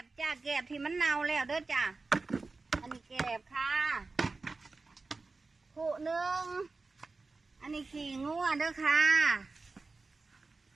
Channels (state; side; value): quieter; left; 3.8 dB